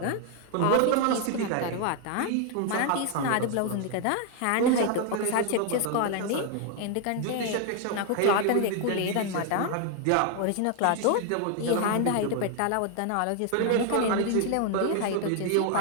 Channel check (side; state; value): both; different; correlation 0.00